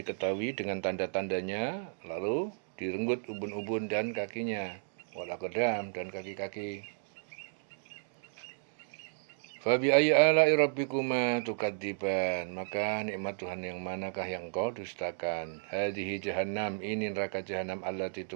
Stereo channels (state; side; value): silent; left; digital silence